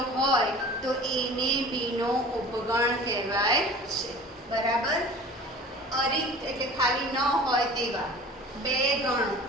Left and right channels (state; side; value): normal; both; correlation 0.42